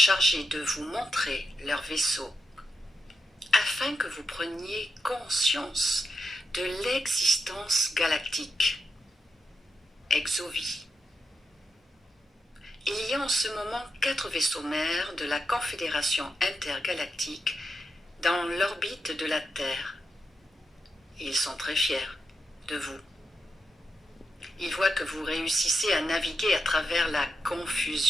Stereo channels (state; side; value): normal; both; correlation 0.86